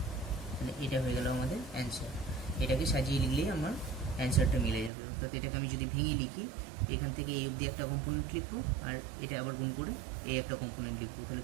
তাহলে এটা হয়ে গেল আমাদের অ্যান্সার। এটাকে সাজিয়ে লিখলেই আমার অ্যান্সারটা মিলে যাবে। অর্থাৎ এটাকে আমি যদি ভেঙে লিখি, এখান থেকে এই অবধি একটা কম্পোনেন্ট লিখবো, আর এটা আবার গুণ করে এই একটা কম্পোনেন্ট লিখবো। তাহলে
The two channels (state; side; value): drops out; left; at 4.9 s